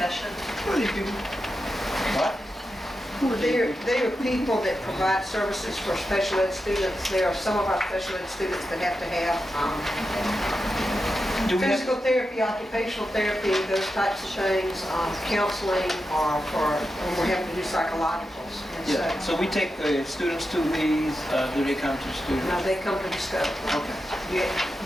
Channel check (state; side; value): normal; both; correlation 0.89